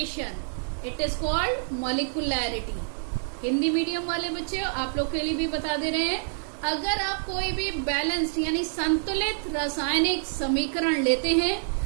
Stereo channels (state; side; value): silent; left; digital silence